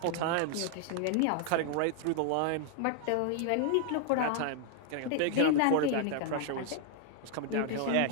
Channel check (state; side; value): different; both; correlation 0.00